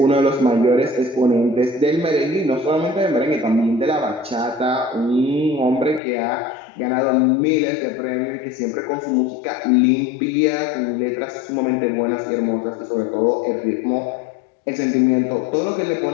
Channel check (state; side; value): drops out; right; at 6.0 s